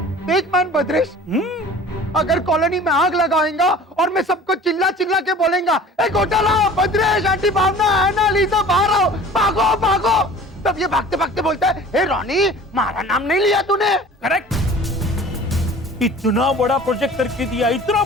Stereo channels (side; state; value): both; normal; correlation 0.44